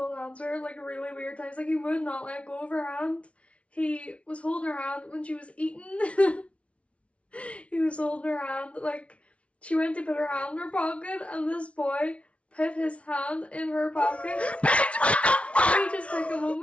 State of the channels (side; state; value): right; late; 0.062 ms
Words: hands with her like really weird times. Like he would not let go of her hand. He was holding her hand when she was eating. He was holding her hand, like she went to put her hand in her pocket, and this boy put his hand in her pocket. Let me just take a